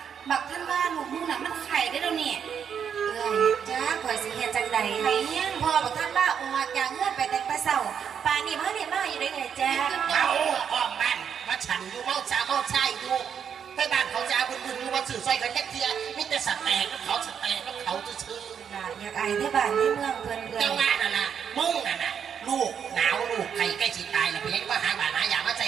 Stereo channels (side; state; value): left; quieter; 7.7 dB